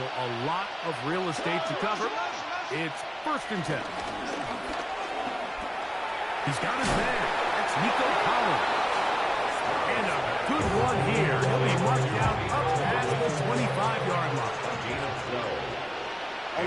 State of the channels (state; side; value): identical; both; correlation 1.00